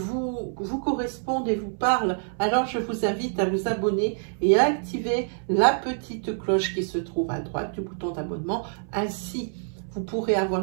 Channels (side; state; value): left; silent; 61 dB below the other